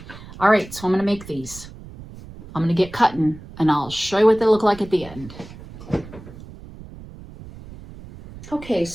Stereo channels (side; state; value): right; noise; rumble, 16 dB below the sound